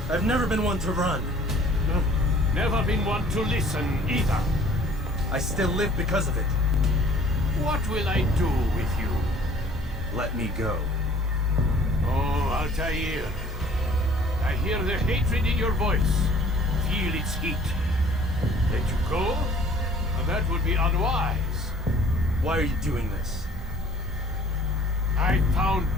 I've never been one to run. Never been one to listen either. I still live because of it. What will I do with you? Let me go. Oh, Altair. I hear the hatred in your voice. Feel its heat. Let you go? Well, that would be unwise. Why are you doing this? I found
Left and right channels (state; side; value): normal; both; correlation 0.53